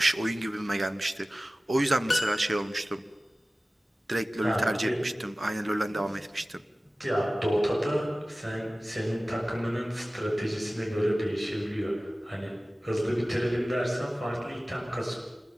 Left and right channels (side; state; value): both; normal; correlation 0.97